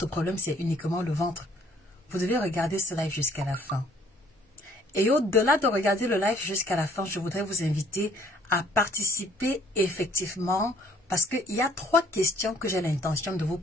problème c'est uniquement le ventre. Vous devez regarder ce live jusqu'à la fin. Et au-delà de regarder le live jusqu'à la fin, je voudrais vous inviter à participer effectivement parce qu'il y a 3 questions que j'ai l'intention de vous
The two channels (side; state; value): both; normal; correlation 0.61